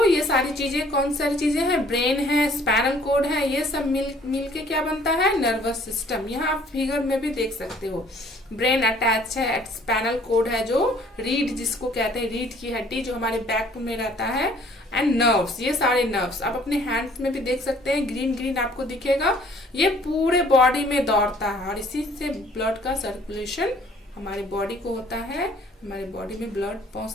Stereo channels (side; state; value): both; normal; correlation 0.57